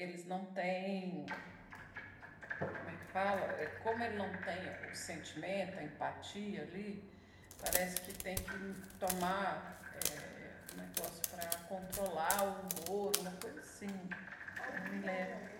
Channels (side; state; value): both; identical; correlation 1.00